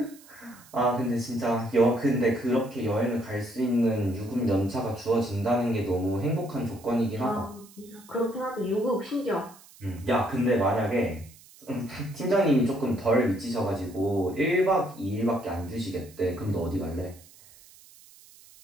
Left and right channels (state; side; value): noise; right; hiss, 23 dB below the sound